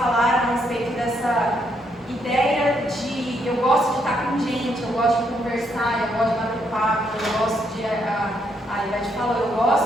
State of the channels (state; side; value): normal; both; correlation 0.75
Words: a respeito dessa ideia de eu gosto de estar com gente, eu gosto de conversar, eu gosto de bater papo, eu gosto de. A Ivete falou, eu